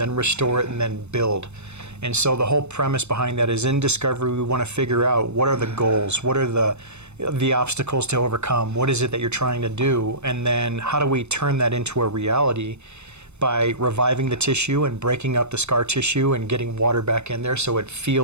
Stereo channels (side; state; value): left; late; 0.82 ms